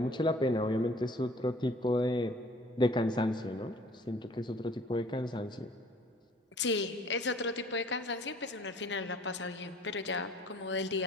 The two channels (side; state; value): both; normal; correlation 0.53